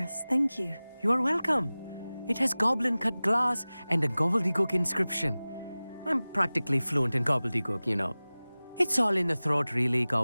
Thank you. You are welcome. It has goblin-cut glass and a gobbledygook inscription. I'm practically fluent in gobbledygook, you know. It's all in the throat, really,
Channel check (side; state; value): both; inverted; correlation -0.98